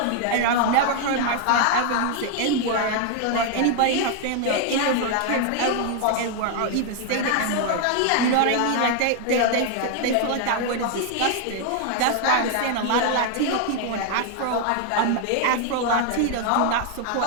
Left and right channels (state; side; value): different; both; correlation 0.00